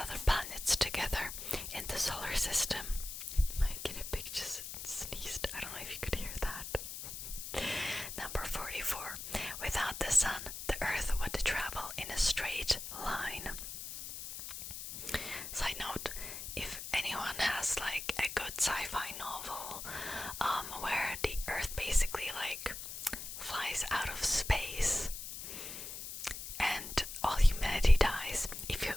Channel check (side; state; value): left; noise; hiss, 8 dB below the sound